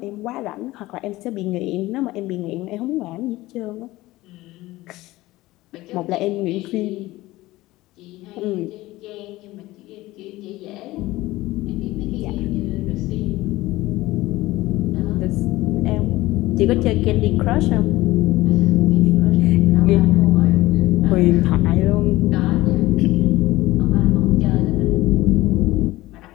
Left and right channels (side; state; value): right; quieter; 18.2 dB